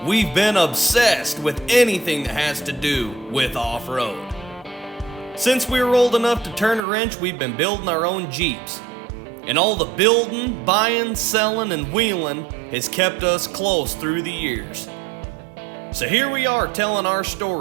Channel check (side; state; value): left; drops out; at 6.8 s